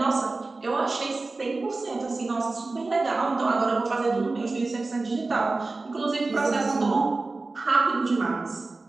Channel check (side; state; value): left; quieter; 3.5 dB